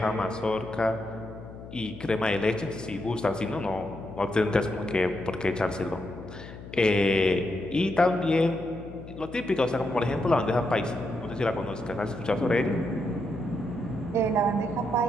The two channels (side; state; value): left; noise; hum, 14 dB below the sound